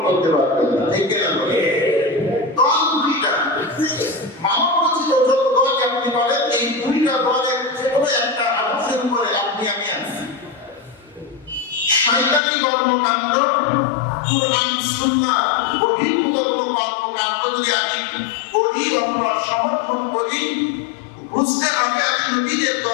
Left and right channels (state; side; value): drops out; right; at 12.4 s